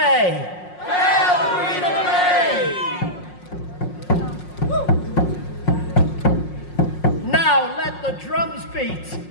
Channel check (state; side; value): late; right; 5.5 ms